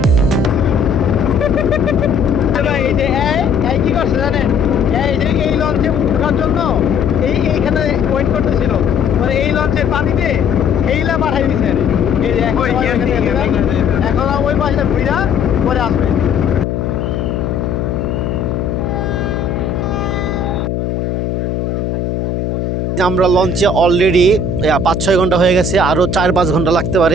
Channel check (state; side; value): noise; left; hum, 2 dB below the sound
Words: কি করছে জানেন, এই লঞ্চে ওঠার জন্য এইখানে ওয়েট করতেছিল, মানে এই লঞ্চের পানিতে এইলা পাঠাই দিচ্ছে। এখন ওই পাশে ঘুরা পরে আসবে। আমরা লঞ্চে অলরেডি 5-6 ঘন্টা হয়ে গেছে, আরো 4-5 ঘন্টা লাগতে